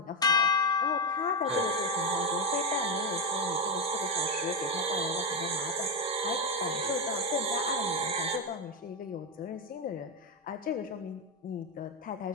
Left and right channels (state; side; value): normal; both; correlation 0.08